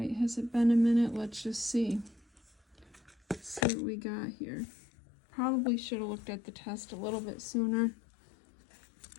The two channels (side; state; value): right; drops out; at 3.7 s